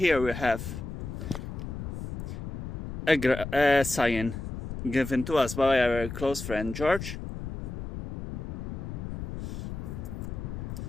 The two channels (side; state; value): left; noise; rumble, 6 dB below the sound